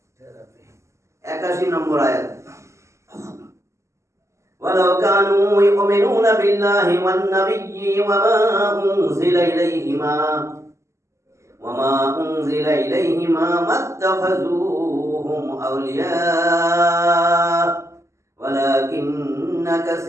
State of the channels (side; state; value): left; late; 0.14 ms